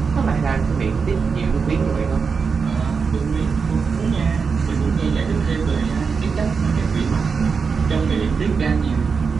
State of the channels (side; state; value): left; quieter; 5.4 dB